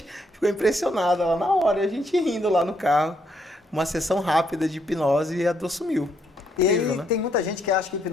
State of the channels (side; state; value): both; normal; correlation 0.73